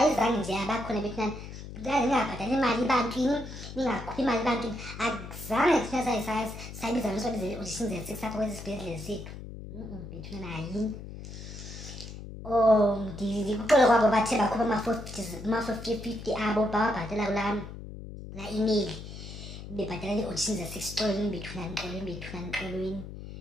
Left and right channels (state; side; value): noise; left; hum, 11 dB below the sound